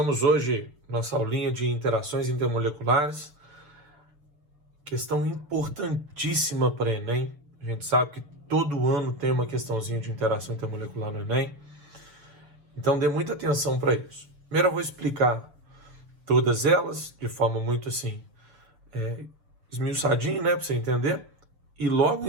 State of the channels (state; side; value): late; left; 7.1 ms